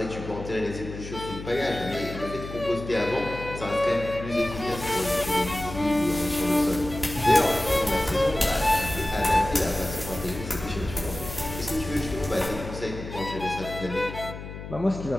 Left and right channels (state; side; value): noise; left; hum, 10 dB below the sound